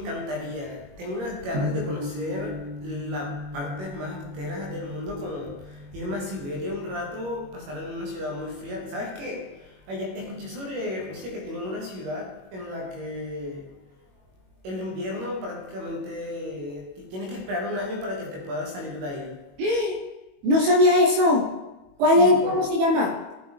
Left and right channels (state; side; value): late; left; 21 ms